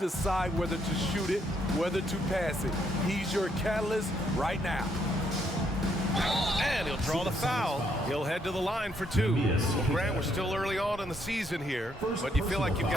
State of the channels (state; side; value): normal; both; correlation 0.73